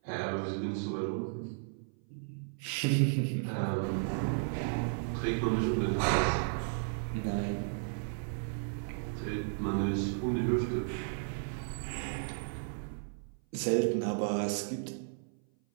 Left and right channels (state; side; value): silent; left; 55 dB below the other